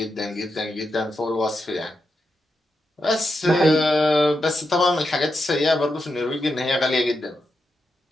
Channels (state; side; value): normal; both; correlation 0.86